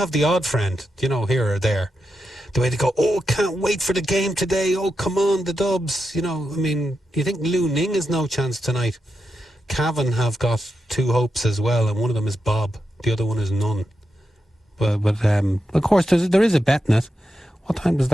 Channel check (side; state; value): both; normal; correlation 0.87